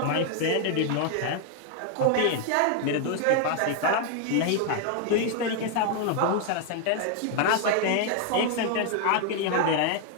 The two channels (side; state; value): both; different; correlation 0.00